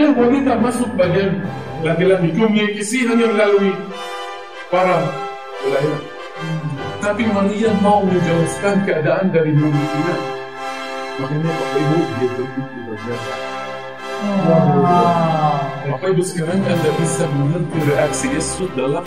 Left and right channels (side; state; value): both; identical; correlation 1.00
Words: wanita masuk bagian laki-laki. Komunikasi hanya melalui para pelayan. Tapi Maria mau menjelaskan keadaan dari mulutnya. Makanya Bapak Ibu dia begitu berjasa. Bapak Ibu sekarang Anda bisa mengerti reaksi Yesus dalam